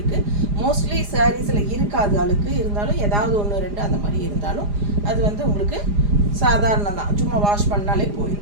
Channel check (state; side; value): late; left; 4.9 ms